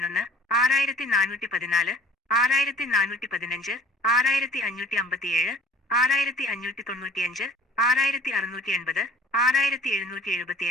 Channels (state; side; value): normal; both; correlation 0.50